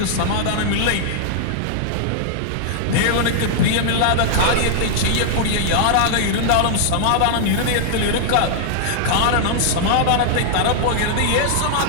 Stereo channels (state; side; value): different; both; correlation -0.01